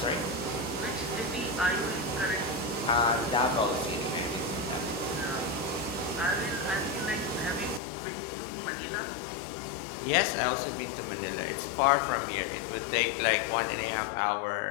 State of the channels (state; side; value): drops out; right; at 7.8 s